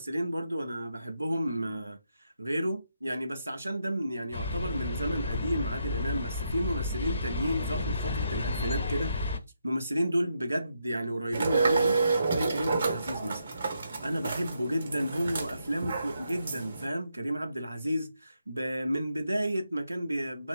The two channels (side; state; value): both; inverted; correlation -0.80